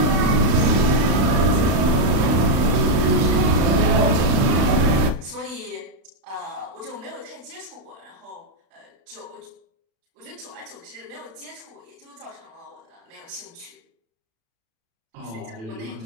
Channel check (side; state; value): left; late; 36 ms